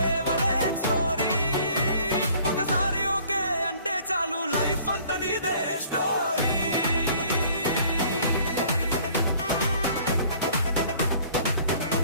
స్టోరీ. ఒకసారి ఓకే అంటే చాలు, లైఫ్ అంతా నీదే స్టోరీ.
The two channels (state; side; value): inverted; both; correlation -0.54